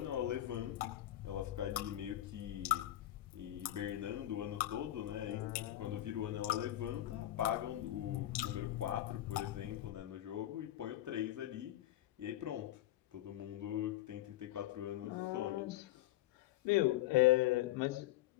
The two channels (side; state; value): right; quieter; 14.5 dB